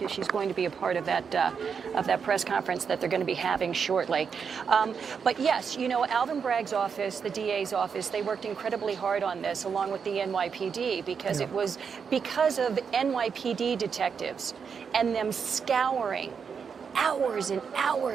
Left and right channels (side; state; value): left; quieter; 6.3 dB